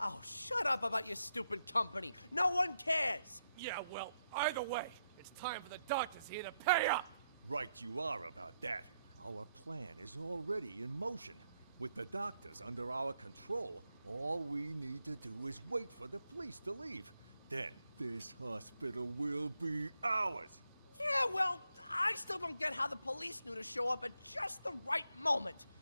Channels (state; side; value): inverted; both; correlation -0.80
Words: shut up about your stupid company. No one cares. Yeah, well, either way, it's time for the doctors here to pay up. Right you are about that. Our plan is already in motion. With the doctors under our control, all we need to do is wait for the police to leave. Then this hospital will be ours. Yeah, well, I still don't get how the police knew to show up at just the right moment,